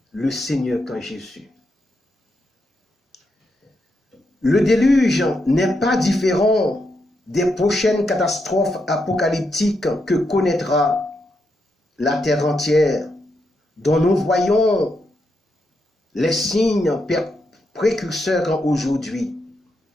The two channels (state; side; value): normal; both; correlation 0.82